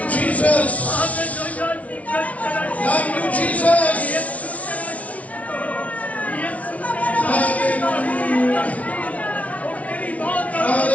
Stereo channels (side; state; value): right; late; 0.067 ms